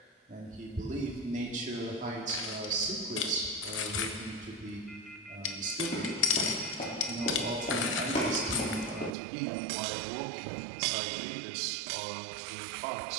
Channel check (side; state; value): left; drops out; at 9.2 s